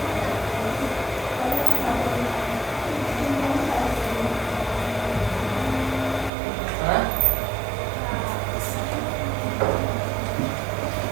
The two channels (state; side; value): drops out; left; at 6.3 s